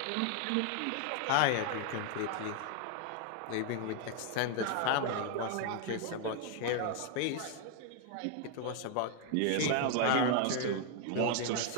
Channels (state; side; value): different; both; correlation 0.00